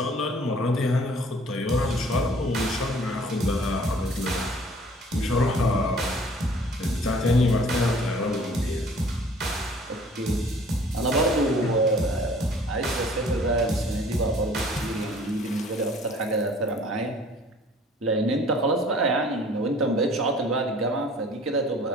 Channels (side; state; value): both; normal; correlation 0.52